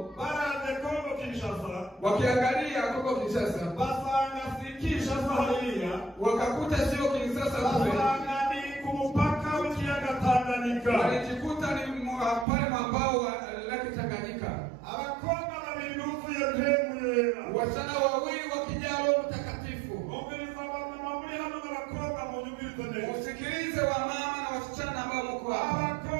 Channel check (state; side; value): drops out; left; at 12.5 s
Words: baraze Kongo Kinshasa, wakiangalia Kongo Kinshasa, basanga si Kinshasa hariya, wakakuta sio Kinshasa kule, basanga ni kumupaka w'ikiyaga Tanganyika. Walijikuta ni pale mabao lake Tanganyika. Abakobwa babiri buzuye mpemu yera, wasichana wawili wakijaa Roho Mtakatifu. Mumviriza wamama muri hano n'abakobwa munyumvirize neza. Usikilize wamama na wasichana ambao mko hapa.